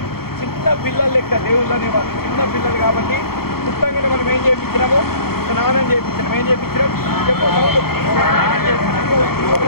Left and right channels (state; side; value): late; right; 0.95 ms